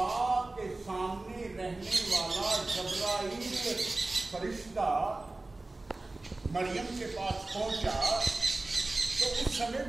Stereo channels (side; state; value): left; quieter; 3.0 dB